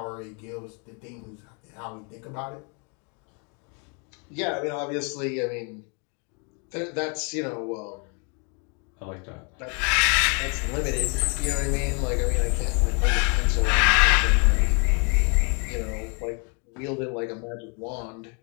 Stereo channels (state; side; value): quieter; right; 36.2 dB